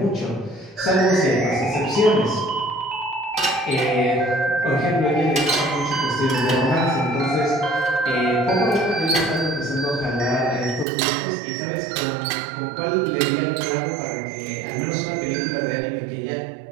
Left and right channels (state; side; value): drops out; left; at 10.9 s